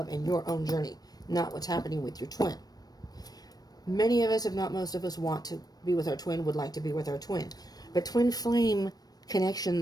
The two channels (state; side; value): late; right; 0.19 ms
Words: and your own journey, not what's happening with your twin. Many of us, if not most of us, want to be with our twin, would like to be with our twin. But twin flame